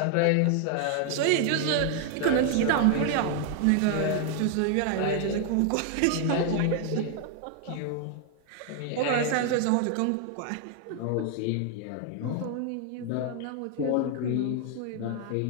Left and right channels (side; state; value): both; different; correlation 0.00